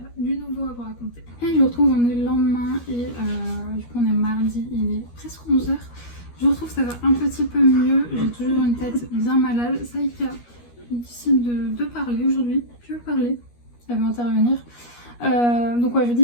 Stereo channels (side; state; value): right; late; 13 ms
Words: du nouveau à vous raconter. Et je vous retrouve, on est le lendemain et du coup on est mardi, il est presque 11h. Je vous retrouve, ça va un petit peu mieux, j'ai toujours une tête bien malade. Saïka décide de parler aujourd'hui, tu veux parler? Elle veut intervenir. Donc ouais, je